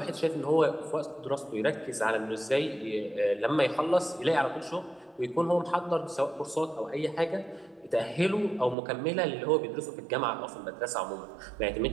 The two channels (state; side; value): drops out; left; at 8.8 s